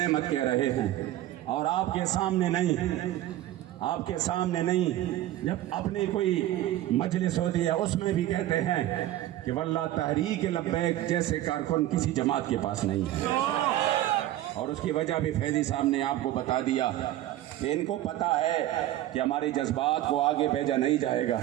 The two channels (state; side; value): quieter; left; 14.2 dB